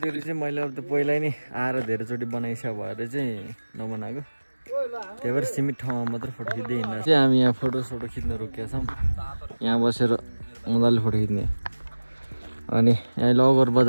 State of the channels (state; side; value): inverted; both; correlation -1.00